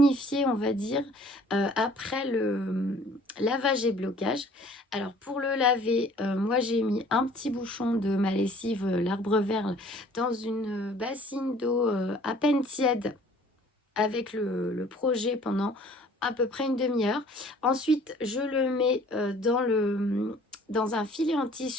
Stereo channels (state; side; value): normal; both; correlation 0.53